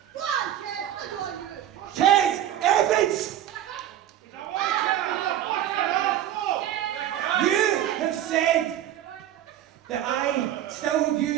Kes Evans! You have said that I still have you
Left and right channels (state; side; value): quieter; left; 11.7 dB